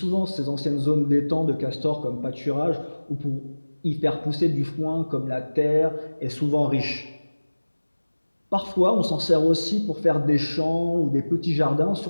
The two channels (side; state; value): both; inverted; correlation -1.00